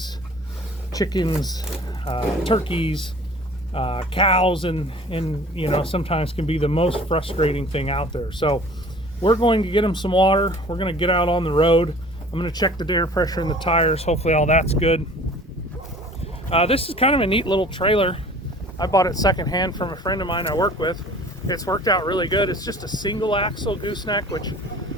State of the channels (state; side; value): normal; both; correlation 0.47